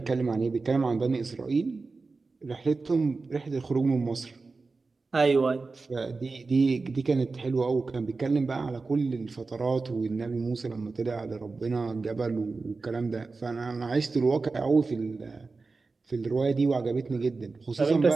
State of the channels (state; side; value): quieter; left; 4.0 dB